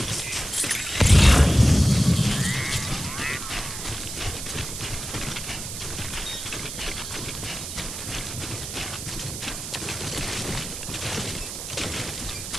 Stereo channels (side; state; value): right; noise; hiss, 8 dB below the sound